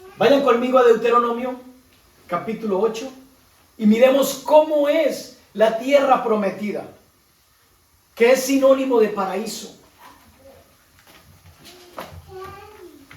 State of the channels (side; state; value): both; identical; correlation 1.00